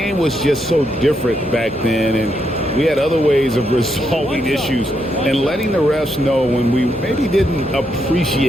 was just so different back then, and we had other ways of resolving issues and letting the refs know when we maybe didn't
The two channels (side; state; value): both; normal; correlation 0.79